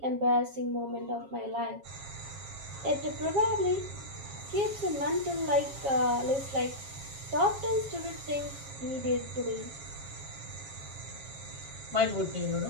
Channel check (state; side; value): late; left; 7.3 ms